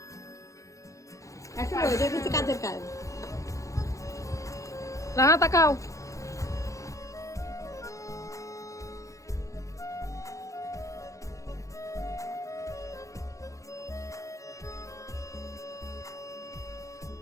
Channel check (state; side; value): late; right; 0.15 ms